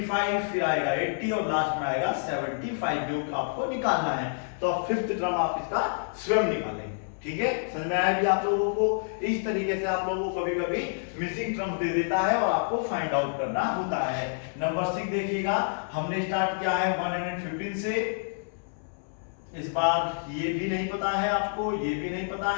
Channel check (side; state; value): right; silent; 59 dB below the other